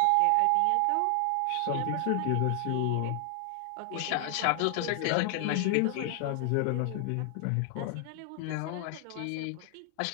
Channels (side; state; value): both; different; correlation 0.00